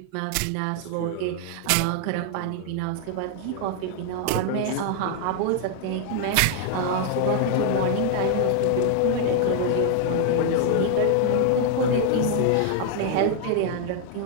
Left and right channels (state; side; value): different; both; correlation 0.00